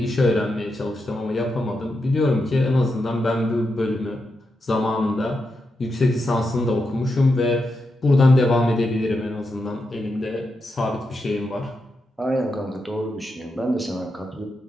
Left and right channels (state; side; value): normal; both; correlation 0.86